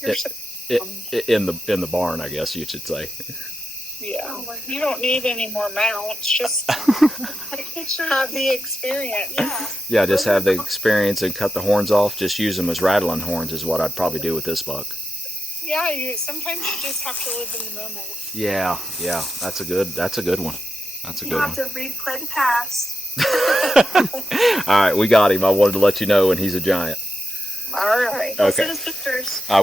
the barn, I guess you should say. Yeah. You don't need any more mounts. Just have the experience. Yeah, just have the experience and cut the horns off. Just use them as rattling horns is what I'd probably do with this buck. Yeah, sometimes you just have to live in the moment. Yeah, that's a good one. That's a good one. You have to replay the past. All right, we got him. I wanted to let you know, and he's a giant. All right. Okay. Send us pictures. I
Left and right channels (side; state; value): both; normal; correlation 0.88